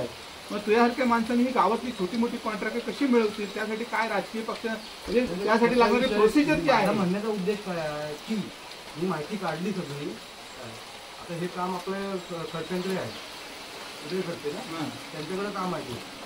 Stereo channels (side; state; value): both; identical; correlation 1.00